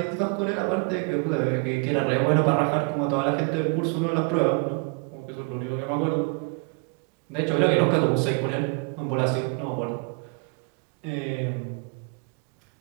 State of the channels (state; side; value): quieter; left; 33.9 dB